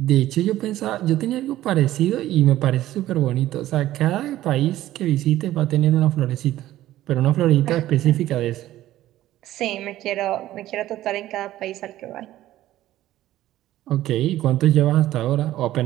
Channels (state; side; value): quieter; left; 14.4 dB